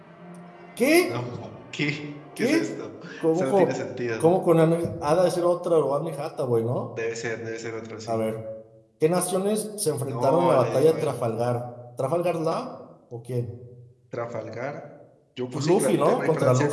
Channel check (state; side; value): identical; both; correlation 1.00